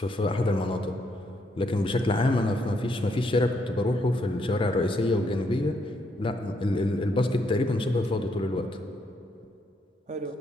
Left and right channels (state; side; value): normal; both; correlation 0.75